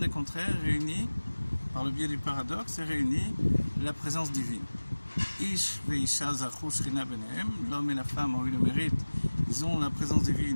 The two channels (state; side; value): inverted; both; correlation -1.00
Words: contraires réunit, par le biais du paradoxe, réunit la présence divine. Ish veisha zachu shrina benehem, l'homme et la femme ont eu le mérite, ils ont la présence